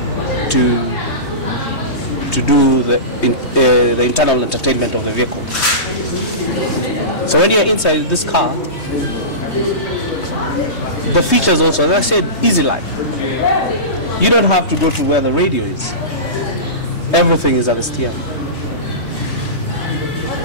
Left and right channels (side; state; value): right; late; 3.2 ms